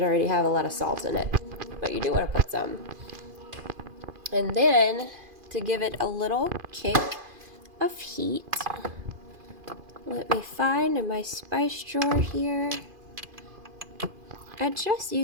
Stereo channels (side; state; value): left; late; 2.5 ms